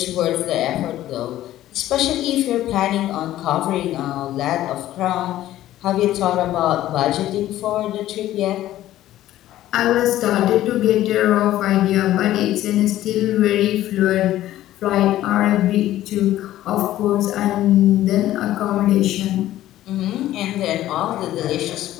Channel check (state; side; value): quieter; right; 13.9 dB